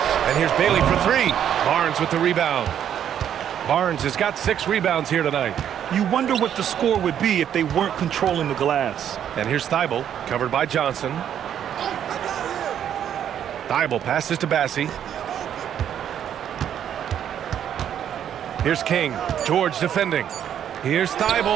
here's Bailey for 3. Barnes with the rebound. Barnes has got 6 rebounds here tonight. You wonder what the score would be if they weren't controlling the glass. And here's Thibault, covered by Johnson. Thibault passes to Bassey. Here's King. George defending. Here's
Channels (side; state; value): left; quieter; 9.6 dB